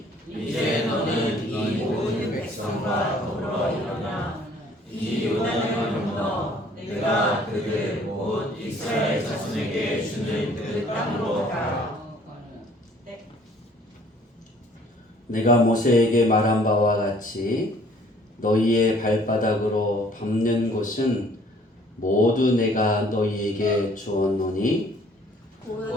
이제 너는 이 모든 백성과 더불어 일어나 이 요단을 건너 내가 그들 곧 이스라엘 자손에게 주는 그 땅으로 가라. 내가 모세에게 말한 바와 같이 너희의 발바닥으로 밟는 곳은 모두 내가 너희에게 주었노니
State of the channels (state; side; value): normal; both; correlation 0.57